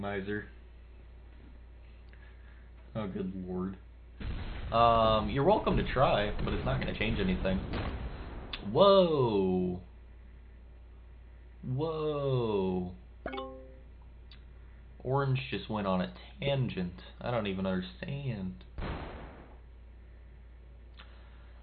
Oh, good lord. You're welcome to try, but it's not going to change anything. Whoa. Whoa. Orange just went on a tangent. I don't even understand.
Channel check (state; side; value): identical; both; correlation 1.00